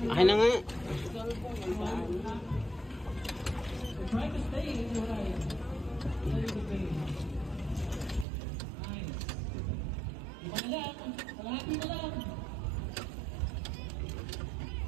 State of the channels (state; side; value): drops out; left; at 8.2 s